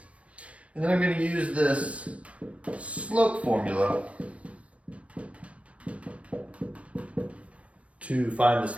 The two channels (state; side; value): late; left; 0.063 ms